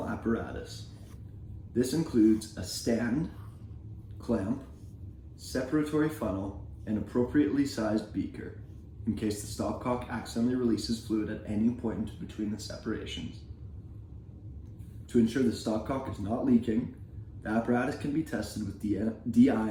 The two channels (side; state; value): both; identical; correlation 1.00